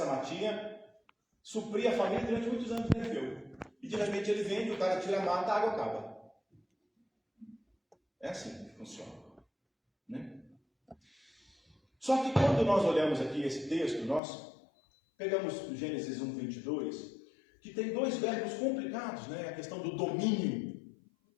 matinha supria a família durante muitos anos que ele viveu. E de repente ele vende, o cara tira a mata, a água acaba. É assim que funciona, né? Só que quando nós olhamos aqui esse texto, nós pegamos Gênesis 1:22, que tem dois verbos complicados, né? A questão do domínio.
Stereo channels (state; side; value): drops out; right; at 14.2 s